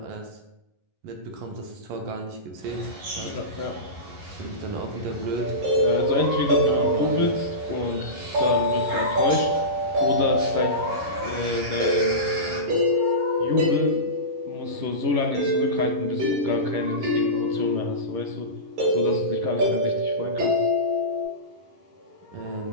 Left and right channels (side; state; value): left; late; 11 ms